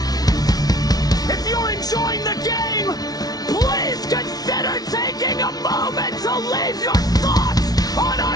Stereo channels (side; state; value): right; late; 0.19 ms